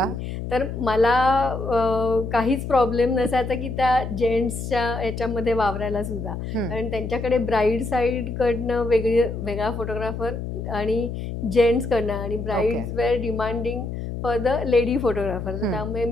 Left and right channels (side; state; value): left; noise; hum, 6 dB below the sound